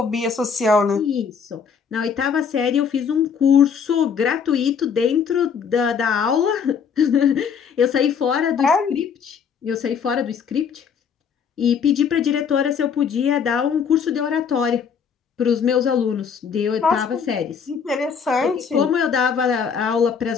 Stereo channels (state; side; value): quieter; right; 6.6 dB